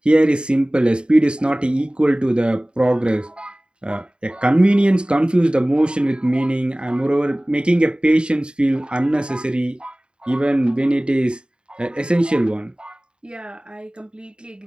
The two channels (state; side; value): late; left; 0.052 ms